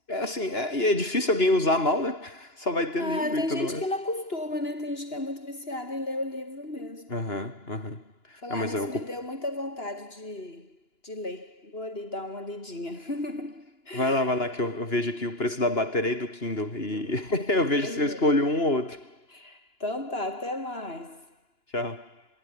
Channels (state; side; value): late; right; 2.9 ms